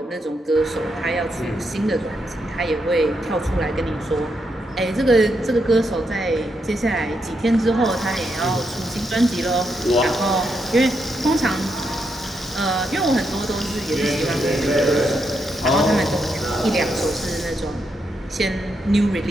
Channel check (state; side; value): normal; both; correlation 0.81